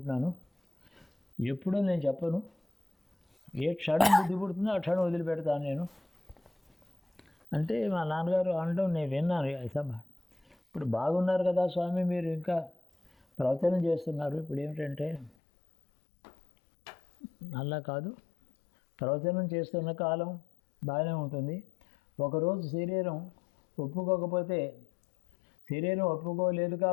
ఎప్పుడూ నేను చెప్పను, ఏ క్షణం బుద్ధి పుడుతుందో ఆ క్షణం వదిలిపెడతాను నేను అంటే మా నాన్నగారు అనడం నేను విన్నాను. అసలు ఇప్పుడు బాగున్నారు కదా స్వామి, మీరు ఇంకా ప్రవచనం చేస్తున్నారు. ఇప్పుడు ఏమిటంటే అలా కాదు, ప్రవచనం చేస్తున్న కాలం బాగానే ఉంటుంది. ఒకరోజు శరీరం ఒప్పుకోకపోతే, శరీరం ఒప్పుకోలేదు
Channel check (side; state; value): right; drops out; at 15.3 s